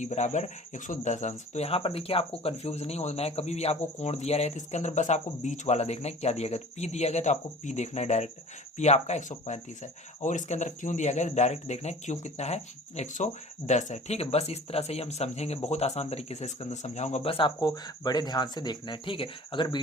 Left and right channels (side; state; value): both; normal; correlation 0.44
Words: बराबर 110 अंश। तो यहाँ पर देखिए आपको कंफ्यूज नहीं होना है। कभी भी आपको कोण दिया रहे तो इसके अंदर बस आपको बीच वाला देखना है क्या दिया गया। तो पी दिया गया तो आपको पी देखना है डायरेक्ट, पी आपका 135 है और इसके अंदर क्यों दिया गया डायरेक्ट देखना है क्यों कितना है 110 है। ठीक है, बस इस तरह से ही हम समझेंगे, बहुत आसान तरीके से इसके अंदर समझाऊंगा, बस आपको बड़े ध्यान से देखना है। ठीक है, अगर